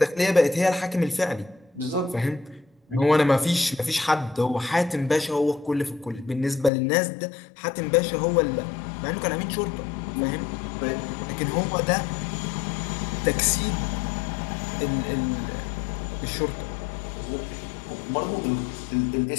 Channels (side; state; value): right; drops out; at 6.7 s